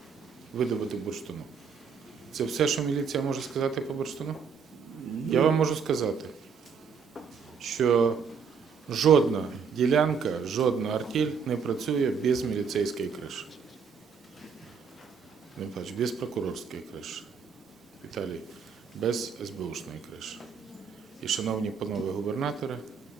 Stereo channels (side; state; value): left; quieter; 6.1 dB